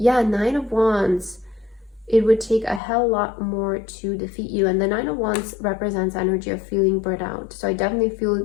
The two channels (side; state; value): right; drops out; at 2.8 s